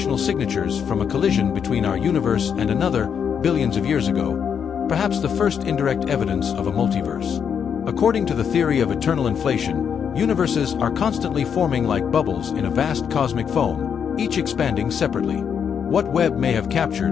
signatures from a collision between our universe and another billions of years ago, perhaps the first indirect evidence of a multiverse. According to the theory of eternal inflation, universes are constantly forming like bubbles in a vast cosmic foam, each expanding separately. What Webb may have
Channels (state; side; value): quieter; right; 7.5 dB